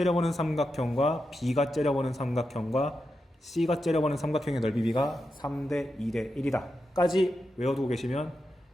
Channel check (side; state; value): both; normal; correlation 0.88